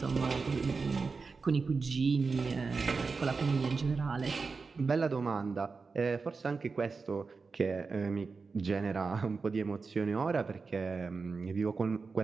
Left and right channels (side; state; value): left; quieter; 4.5 dB